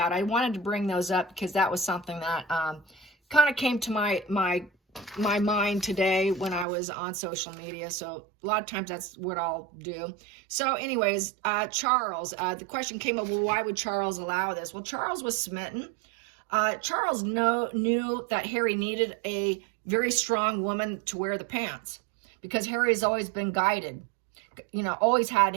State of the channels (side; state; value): left; drops out; at 6.7 s